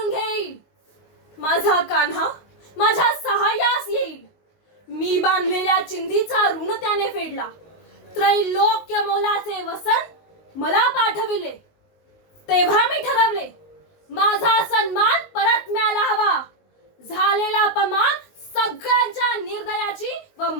घेईल. माझा कान्हा माझ्या सहाय्यास येईल. मी बांधलेल्या चिंधीचा ऋण त्याने फेडला. त्रैलोक्य मोलाचे वसन मला पाठविले. तेव्हा मी ठरवले, माझा सन्मान परत मिळायला हवा. झालेला अपमान सगळ्यांच्या निर्दयाची व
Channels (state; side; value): late; right; 19 ms